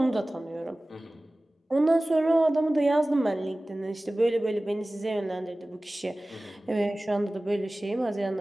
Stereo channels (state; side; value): normal; both; correlation 0.98